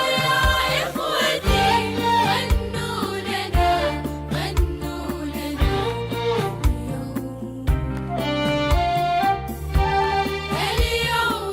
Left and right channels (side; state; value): both; identical; correlation 1.00